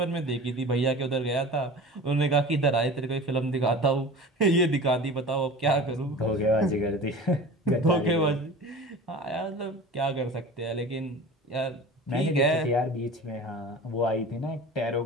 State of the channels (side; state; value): both; normal; correlation 0.37